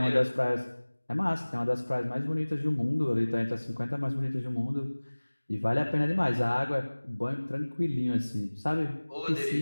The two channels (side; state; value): both; inverted; correlation -1.00